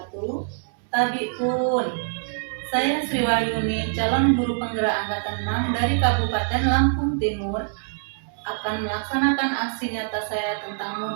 Tabiun, saya Sri Wahyuni, calon guru penggerak angkatan 6 dari Kabupaten Lampung Timur, akan melaksanakan aksi nyata saya tentang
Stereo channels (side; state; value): left; silent; digital silence